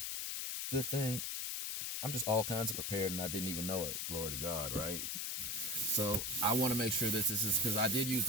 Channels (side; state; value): left; noise; hiss, 2 dB below the sound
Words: Good thing I'm just all kinds of prepared and I didn't even know it. Glory to God, right? So I want to make sure that this is, because I did use